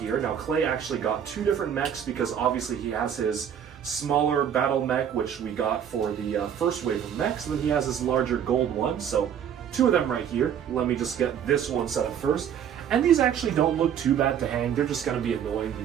Now, Clay actually got 2 different mechs because obviously he has his smaller battle mech, which we got for the first wave of mechs, and then he has his larger gold one, so 2 of them right here. Let me just get this one set up first. And these actually don't look too bad to hang. They're just going to be annoying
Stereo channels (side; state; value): left; quieter; 8.9 dB